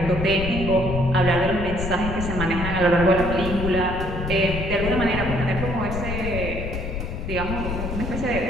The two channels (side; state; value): left; noise; rumble, 5 dB below the sound